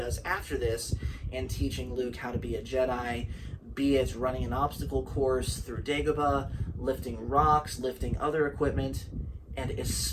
after this in teaching Luke how to be a Jedi, be it running an obstacle course through Dagobah, lifting rocks, lifting other equipment, and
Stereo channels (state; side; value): identical; both; correlation 1.00